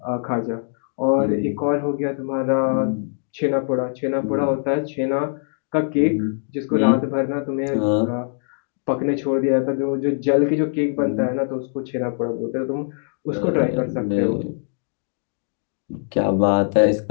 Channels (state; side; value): silent; right; digital silence